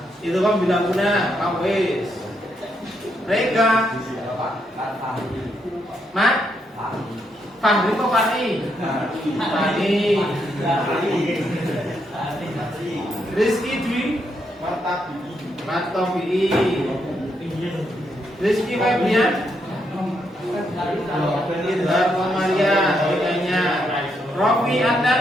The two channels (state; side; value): normal; both; correlation 0.78